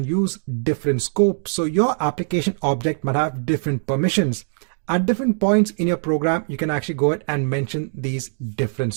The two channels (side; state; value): left; silent; digital silence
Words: use different scopes, so your application object might have different permissions. At different points in your program, you can actually go ahead and mention these different